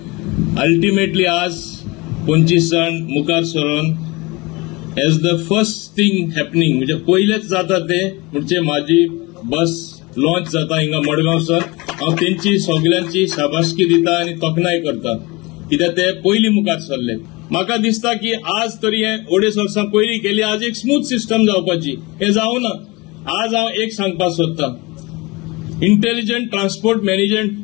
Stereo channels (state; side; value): quieter; right; 24.6 dB